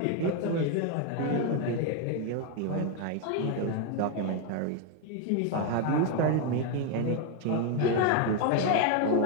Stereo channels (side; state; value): both; different; correlation 0.01